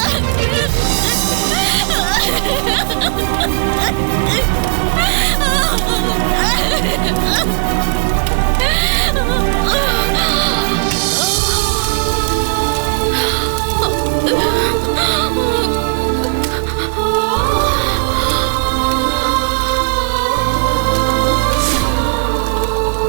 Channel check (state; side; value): silent; left; digital silence